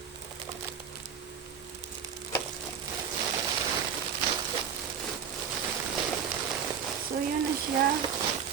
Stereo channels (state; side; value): quieter; left; 7.4 dB